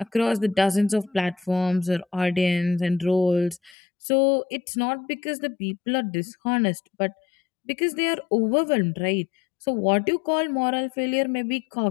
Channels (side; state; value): right; drops out; at 3.8 s